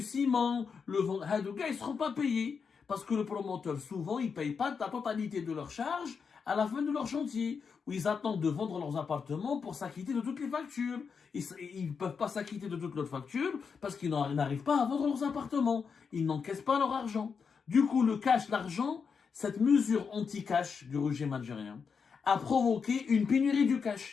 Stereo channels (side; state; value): right; quieter; 5.9 dB